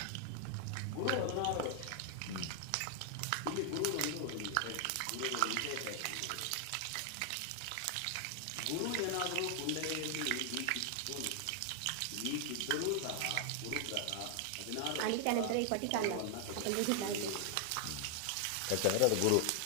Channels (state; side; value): different; both; correlation 0.00